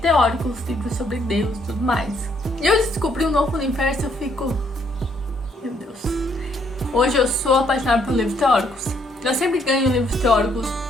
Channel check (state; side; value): normal; both; correlation 0.70